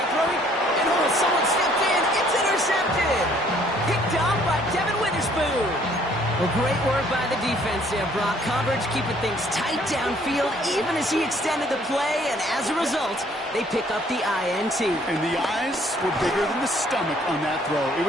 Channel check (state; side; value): normal; both; correlation 0.61